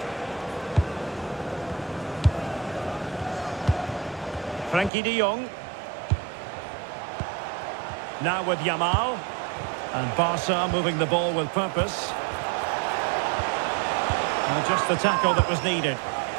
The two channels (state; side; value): drops out; left; at 4.9 s